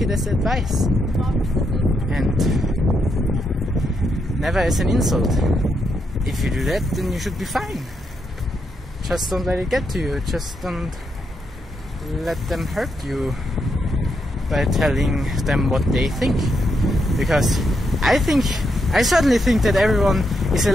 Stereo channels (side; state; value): both; normal; correlation 0.81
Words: it as advice. And never as an insult. If you do that, then you should be fine. Just don't let it get to you. Just don't let them hurt you by telling them what they think. Because I certainly think that everyone is